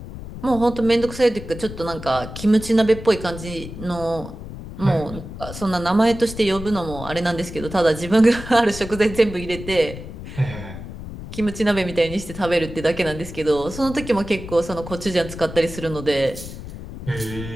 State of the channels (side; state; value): left; noise; rumble, 11 dB below the sound